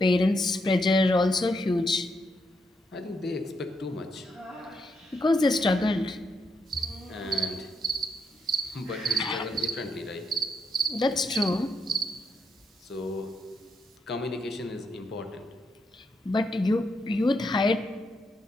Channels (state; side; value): normal; both; correlation 0.80